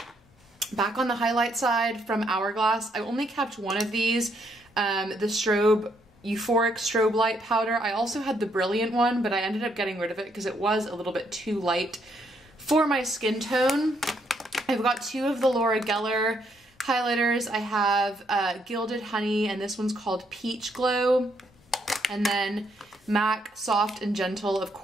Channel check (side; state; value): both; normal; correlation 0.73